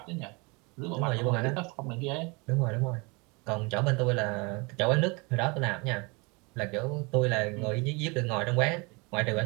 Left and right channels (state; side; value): quieter; left; 28.6 dB